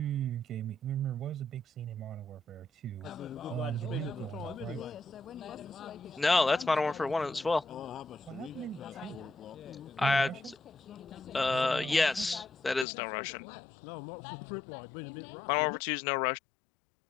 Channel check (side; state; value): right; drops out; at 12.9 s